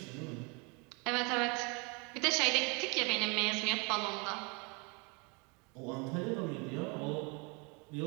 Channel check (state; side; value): quieter; left; 31.0 dB